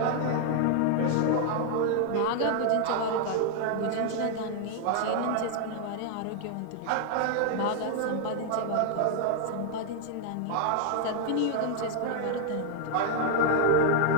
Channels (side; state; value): both; different; correlation 0.00